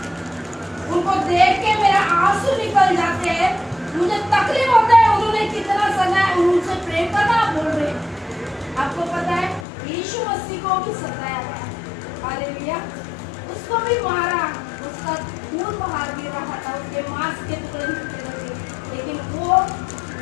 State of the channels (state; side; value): drops out; right; at 9.7 s